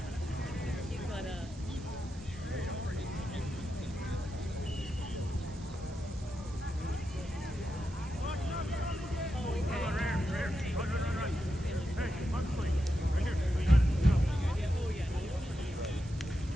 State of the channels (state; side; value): noise; right; hiss, 21 dB below the sound